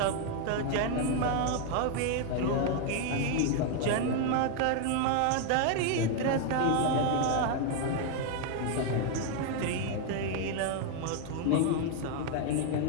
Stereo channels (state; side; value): different; both; correlation 0.01